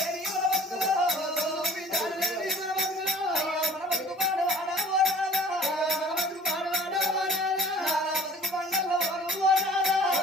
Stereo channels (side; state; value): both; normal; correlation 0.51